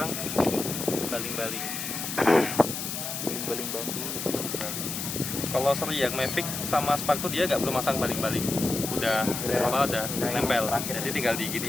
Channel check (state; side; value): noise; left; hiss, 4 dB below the sound